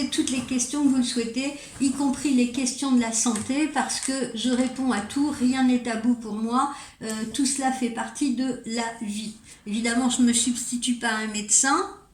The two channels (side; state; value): both; identical; correlation 1.00